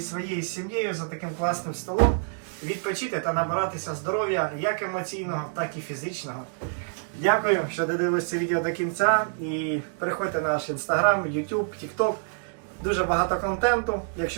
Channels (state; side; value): silent; left; digital silence